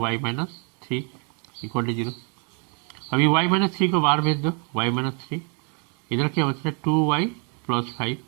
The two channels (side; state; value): left; quieter; 38.2 dB